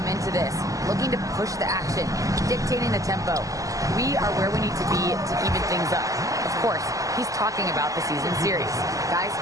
into this, looking to push the action, dictating the tempo. We are where we need to be to even things up." Of course, he's talking about the season series. Guys,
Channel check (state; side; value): late; left; 0.16 ms